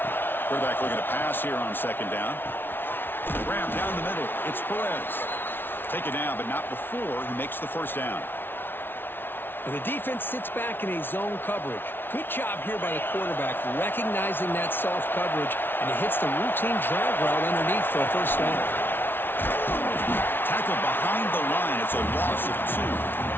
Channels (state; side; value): late; right; 0.10 ms